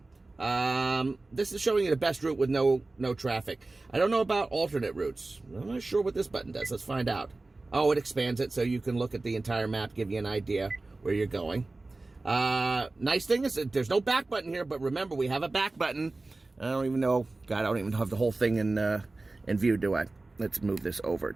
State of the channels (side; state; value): left; quieter; 3.2 dB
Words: This is showing you the best route with no traffic. I don't know about alternate routes. I'm not sure what this button does. Let's find out. Oh, it expands it so you can look at the entire map, give you an idea where you're going. Nice thing is that there's no back button here, but remember, we have a back button. I don't even know. God, I don't even have the whole thing in view, do I? Let's move this over